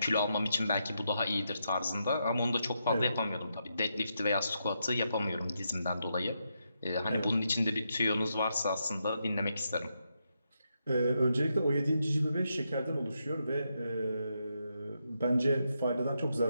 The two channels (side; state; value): both; inverted; correlation -0.83